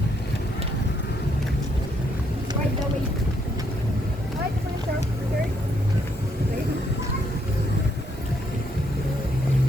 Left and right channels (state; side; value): normal; both; correlation 0.73